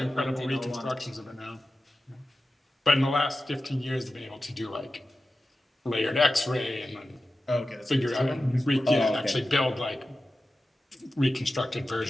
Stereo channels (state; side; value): normal; both; correlation 0.93